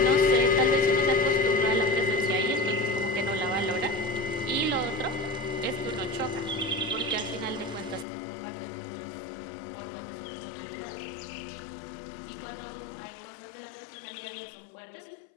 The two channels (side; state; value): right; drops out; at 8.1 s